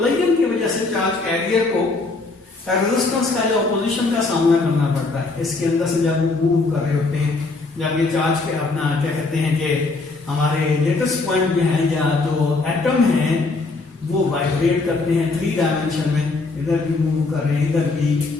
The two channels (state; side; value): quieter; right; 3.6 dB